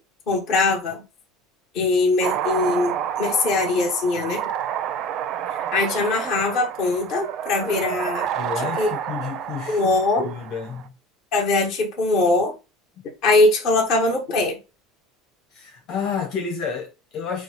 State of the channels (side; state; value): both; normal; correlation 0.40